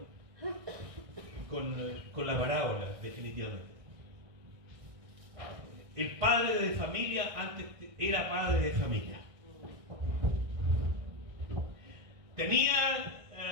con la parábola, definitivamente. El padre de familia antes era padre de familia. Tenía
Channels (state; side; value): late; left; 1.6 ms